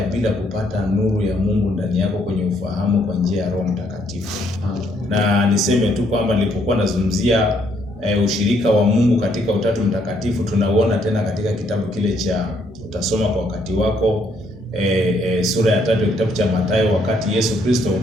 bila kupata nuru ya Mungu ndani yako kwenye ufahamu kwa njia ya Roho Mtakatifu. Na niseme tu kwamba nilipokuwa nazungumzia ushirika wa Mungu katika Utatu Mtakatifu, tunauona tena katika kitabu kile cha utasoma kwa wakati wako, sura ya 3 kitabu cha Mathayo, wakati Yesu Kristo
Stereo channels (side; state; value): both; normal; correlation 0.70